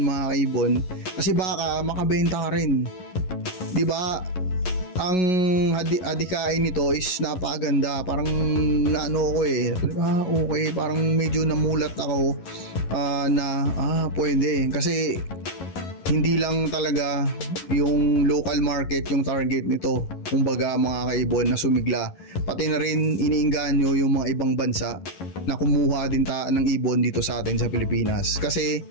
mga kaibon, kasi baka makabenta ka rin, di ba? Ang adhikain nito is napakaganda. Parang naano ko okay, parang medyo namulat ako na pwede. Kasi hindi lang talaga yung local market yung target nito, kumbaga mga kaibon, na sumigla. Pati na rin iniengganyo yung mga ibang bansa na kumuha din ng ibon dito sa atin sa Pilipinas. Kasi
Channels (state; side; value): late; right; 11 ms